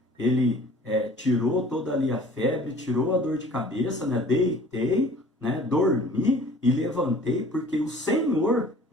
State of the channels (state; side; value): normal; both; correlation 0.49